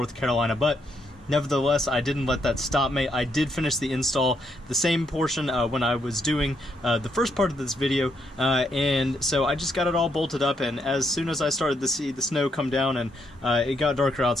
Carolina, but nevertheless, I didn't let that stop me. I did finish the install, the same portion when I was doing the first part of this video, and so I just got it all bolted up, and as soon as I started to see the snow come down and it got darker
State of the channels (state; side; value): normal; both; correlation 0.76